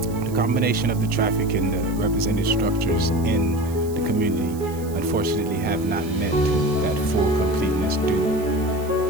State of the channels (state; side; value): noise; right; hiss, 19 dB below the sound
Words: the combination of the traffic and the represented structures in the community unfortunately have not met that full completeness due